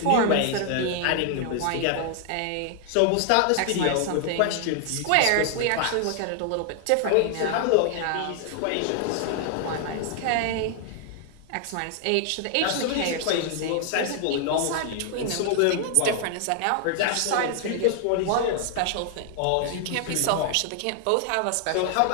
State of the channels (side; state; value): both; different; correlation 0.00